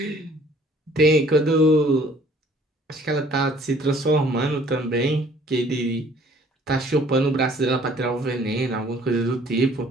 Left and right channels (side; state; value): both; normal; correlation 0.56